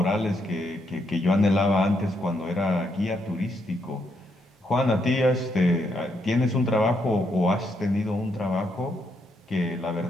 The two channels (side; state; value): both; normal; correlation 0.77